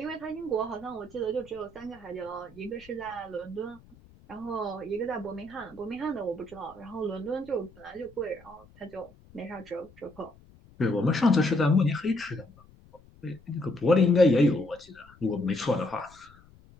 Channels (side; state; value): left; noise; rumble, 25 dB below the sound